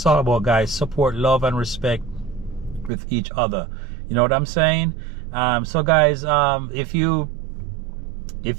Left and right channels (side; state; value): left; drops out; at 2.9 s